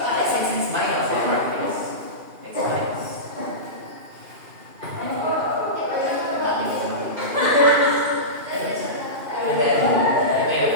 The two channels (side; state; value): left; late; 2.4 ms